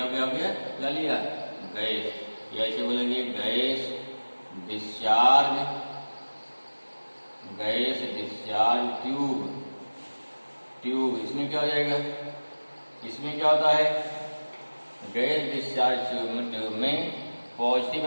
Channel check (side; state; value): both; inverted; correlation -1.00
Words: हो गया, क्या लिया, गैस, या ऐसे बोलेंगे gas discharge, gas discharge tube, इसमें क्या हो जाएगा, इसमें क्या होता है, गैस डिस्चार्ज ट्यूब में पॉजिटिव